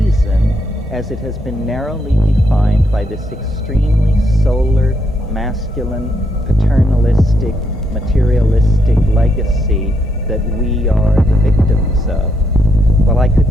as it has been narrowly defined by this extremely solar, masculine, paternalistic, materialistic legacy that we are the victims of. Well, I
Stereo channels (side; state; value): both; normal; correlation 0.78